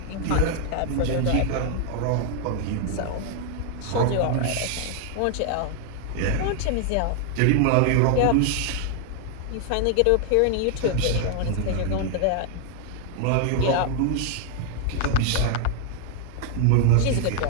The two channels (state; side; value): different; both; correlation 0.00